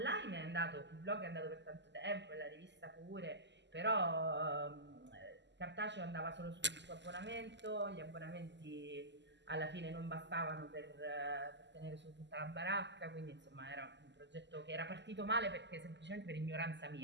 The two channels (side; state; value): left; late; 0.51 ms